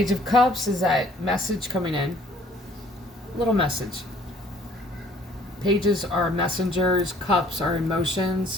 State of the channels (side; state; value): both; normal; correlation 0.58